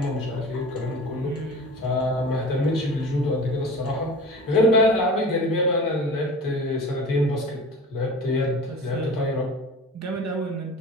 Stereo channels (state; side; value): normal; both; correlation 0.37